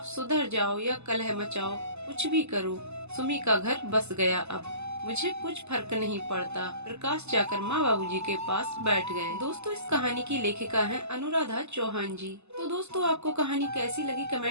सुधर जाओ या कलह मचाओ, कुछ भी करो, सुमी का घर बस गया। अब मुझे कुछ फर्क नहीं पड़ता। प्रकाश जाकर माँ बाबूजी के पास बैठ गए। दोस्तों, इस कहानी की लेखिका हैं अनुराधा चौहान जी। तो दोस्तों, आपको कहानी कैसी लगी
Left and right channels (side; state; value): left; late; 0.80 ms